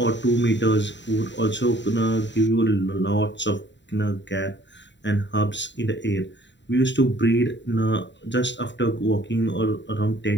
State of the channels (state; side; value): late; right; 0.52 ms